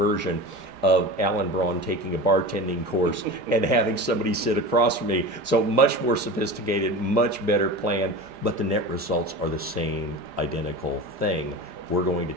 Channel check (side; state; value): left; late; 4.9 ms